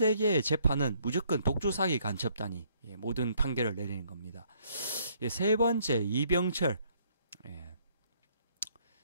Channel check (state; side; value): inverted; both; correlation -0.66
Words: 재판은 무조건 독주사기 간첩단이 모든 판결을 내리는 겁니다. 세 번째, 이병철.